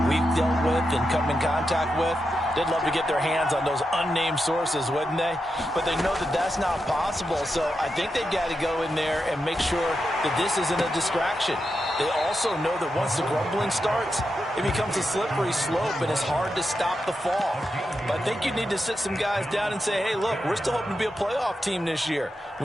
we've dealt with and come in contact with. They'd love to get their hands on those unnamed sources, wouldn't they? But they know that that's not possible, so I think they've got to go in there and make sure that this isn't a distraction. They also know that once the grumbling starts, it becomes a slippery slope, and it's hard to stop the fall. But I think you need to sit some guys down and say, hey, look, we're still hoping to be a playoff team this year.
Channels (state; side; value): normal; both; correlation 0.87